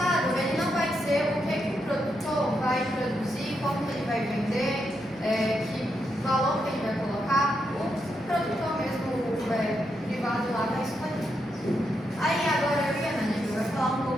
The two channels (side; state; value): both; normal; correlation 0.82